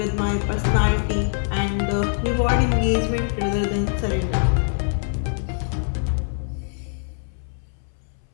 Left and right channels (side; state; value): right; silent; 60 dB below the other